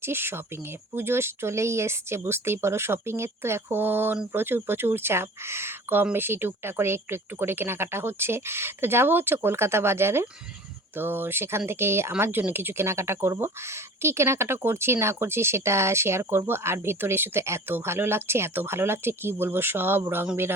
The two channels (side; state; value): both; normal; correlation 0.41